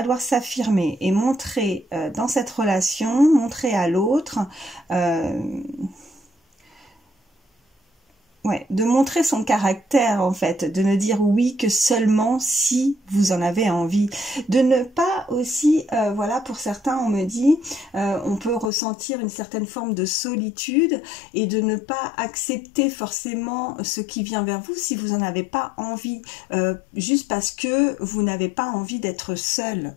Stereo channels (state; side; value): drops out; right; at 18.7 s